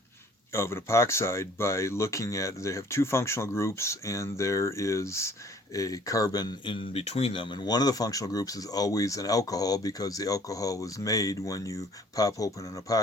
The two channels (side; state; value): both; normal; correlation 0.55